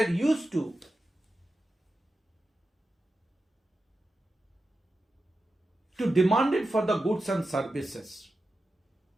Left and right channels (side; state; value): both; normal; correlation 0.91